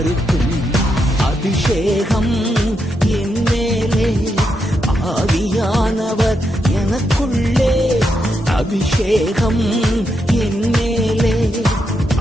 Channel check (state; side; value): normal; both; correlation 0.83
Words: அபிஷேகம் என் மேலே, ஆவியானவர் எனக்குள்ளே. அபிஷேகம் என் மேலே,